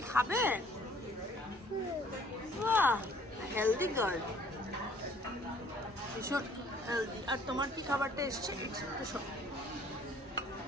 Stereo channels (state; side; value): normal; both; correlation 0.57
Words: খাবে? বাহ, হেলদি গার্ল, ভীষণ হেলদি। আর তোমার কি খাবারটা এসছে?